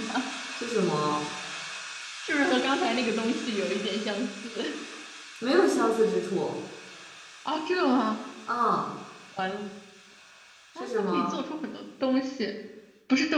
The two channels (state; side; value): identical; both; correlation 1.00